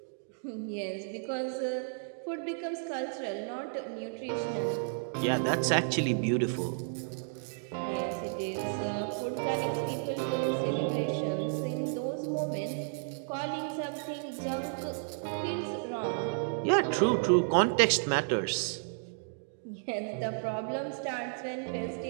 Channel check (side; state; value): left; silent; digital silence